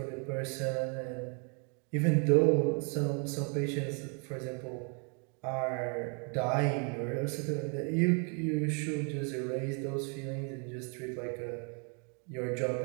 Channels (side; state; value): left; quieter; 37.9 dB